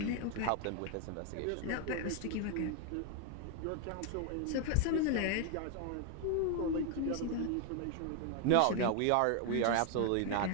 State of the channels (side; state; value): both; different; correlation 0.01